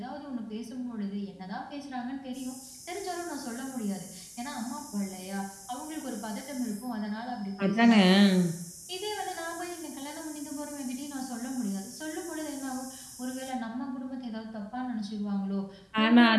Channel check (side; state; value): both; identical; correlation 1.00